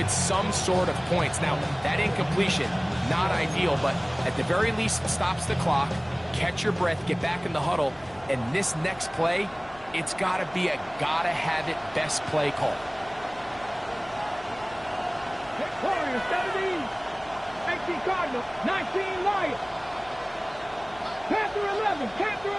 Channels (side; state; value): left; noise; hum, 25 dB below the sound